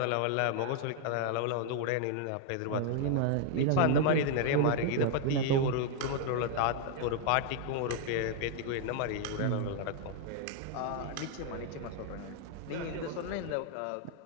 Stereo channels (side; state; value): both; different; correlation 0.00